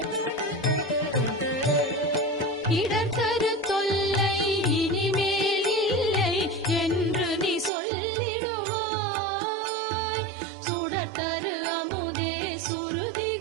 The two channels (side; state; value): left; drops out; at 7.7 s